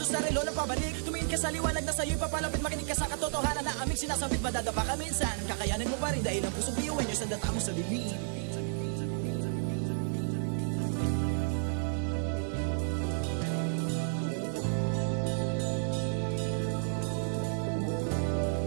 sa relo na pabalik Tumingin ka sa liwanag na sa'yo'y papalapit Makinig ka sa katotohanan na aming sinasabit Madadapa ka minsan, kakayanin mo pa rin Dahil ang pusong biyuin nyo sa data mo sa dilim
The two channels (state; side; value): silent; left; digital silence